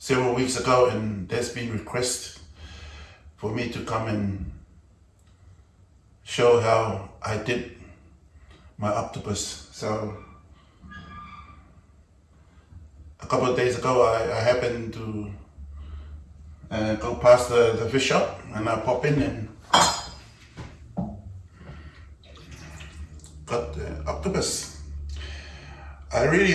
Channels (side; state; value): both; identical; correlation 1.00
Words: weeks ago, and there's been requests for me to come and show how I did my octopus. So a couple of days ago I happened to go past the fish shop, and I pop in and got the octopus. I